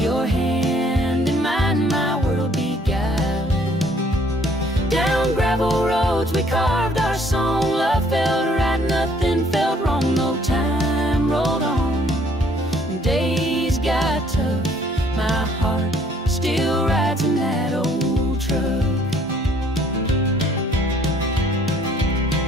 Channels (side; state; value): both; normal; correlation 0.61